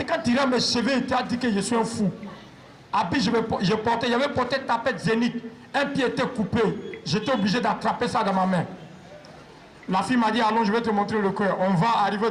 quand tu regardes mes cheveux, il t'a dit que je suis un fou. Habit, j'avais porté tapette zénith. Un pied était coupé. J'étais obligé d'attraper ça dans ma main. La fille m'a dit, allons, je vais te montrer le cœur. On va arriver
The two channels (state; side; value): identical; both; correlation 1.00